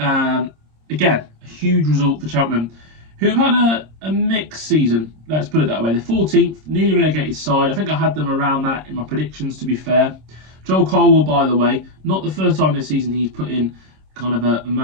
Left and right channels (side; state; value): left; late; 26 ms